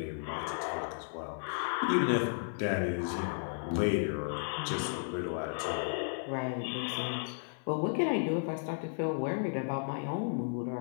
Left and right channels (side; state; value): right; silent; 55 dB below the other